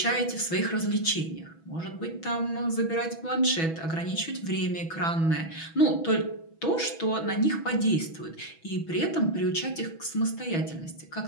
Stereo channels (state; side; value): late; right; 6.1 ms